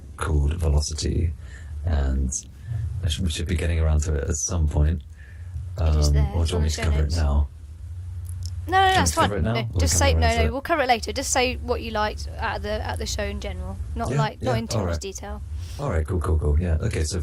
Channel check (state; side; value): identical; both; correlation 1.00